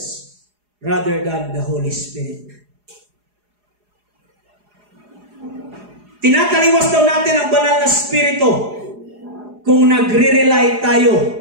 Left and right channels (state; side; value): late; left; 4.8 ms